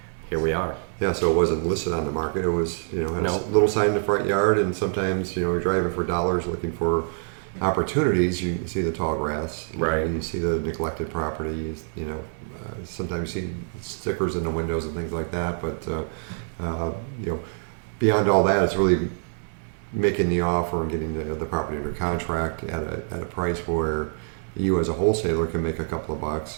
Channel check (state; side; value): silent; left; digital silence